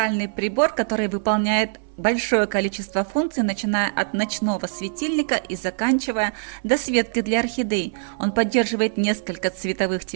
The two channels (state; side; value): silent; left; 59 dB below the other